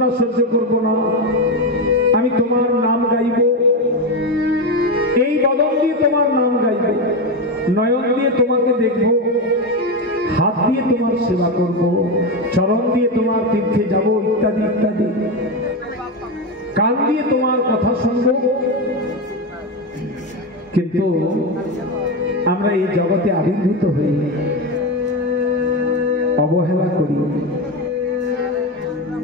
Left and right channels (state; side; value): normal; both; correlation 0.14